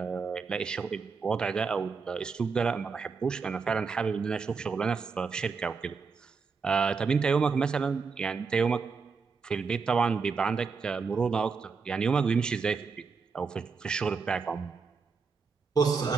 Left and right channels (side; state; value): left; quieter; 5.1 dB